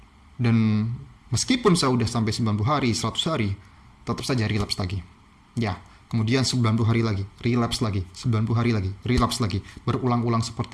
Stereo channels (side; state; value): both; identical; correlation 1.00